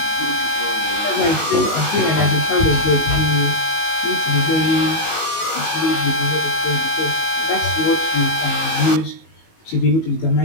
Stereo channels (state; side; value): late; right; 19 ms